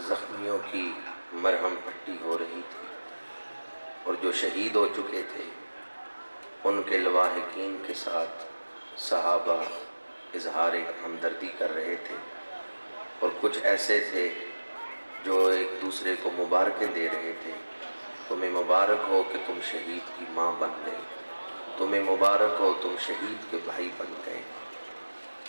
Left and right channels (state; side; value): inverted; both; correlation -1.00